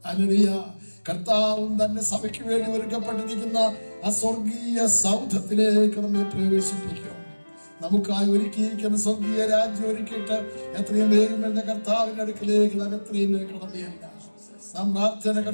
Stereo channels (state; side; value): inverted; both; correlation -1.00